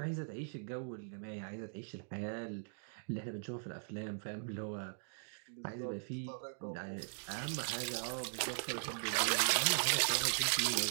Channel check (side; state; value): left; silent; digital silence